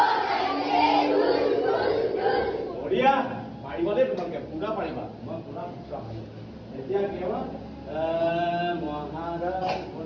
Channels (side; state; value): both; identical; correlation 1.00